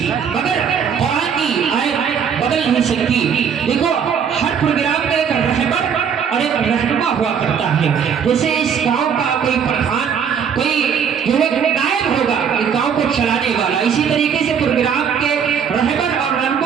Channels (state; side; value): quieter; left; 7.3 dB